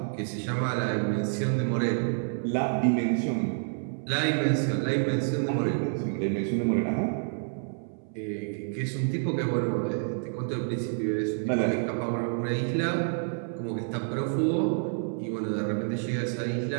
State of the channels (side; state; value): left; silent; 59 dB below the other